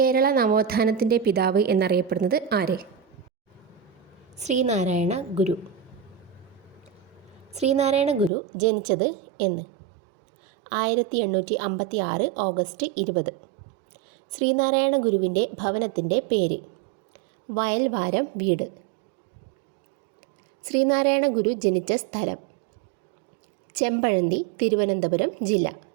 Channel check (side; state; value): left; drops out; at 8.3 s